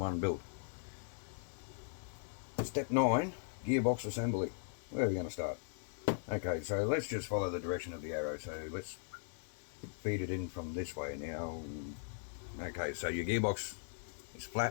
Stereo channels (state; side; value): silent; right; digital silence